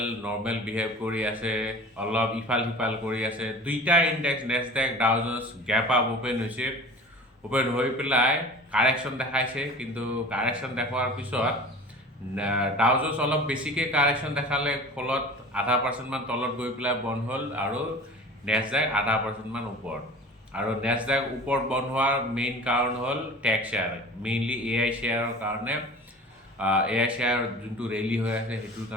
normal behave কৰি আছে অলপ ইফাল সিফাল কৰি আছে দুইটা index Nasdaq Dow Jones gap up open হৈছে ওপেন হৈ পেলাই কাৰেকশ্যন দেখাইছে কিন্তু কাৰেকশ্যন দেখুৱাৰ পিছত ডাও জোন্স অলপ বেছিকৈ কাৰেকশ্যন দেখালে ফলত 0.5% মান তলত গৈ পেলাই বন্ধ হ'ল আৰু নেছডেক 0.5% মান ওপৰত আৰু নেছডেক ওপৰত বন্ধ হোৱাৰ মেইন কাৰণ হ'ল টেক শ্বেয়াৰ মেইনলি এআই শ্বেয়াৰৰ কাৰণে এআই শ্বেয়াৰ যোনটো ৰেলী হৈ আছে সেইটোৰ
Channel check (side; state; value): both; normal; correlation 0.39